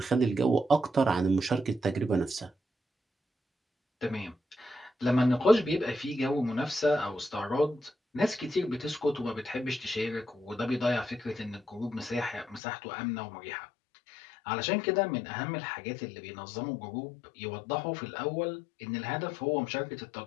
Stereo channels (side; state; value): right; drops out; at 12.6 s